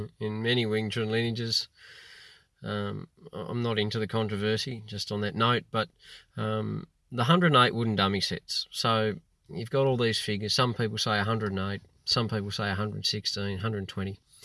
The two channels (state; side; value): identical; both; correlation 1.00